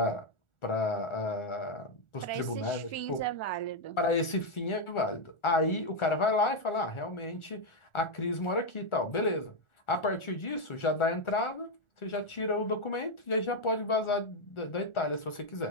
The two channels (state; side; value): late; right; 1.4 ms